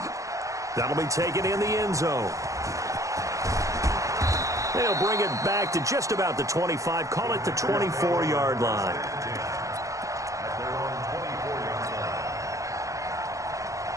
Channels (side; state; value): left; late; 0.16 ms